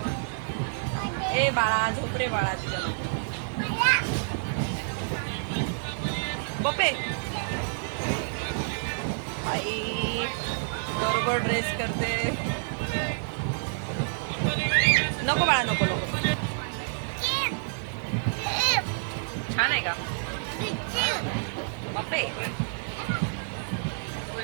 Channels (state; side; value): silent; left; 55 dB below the other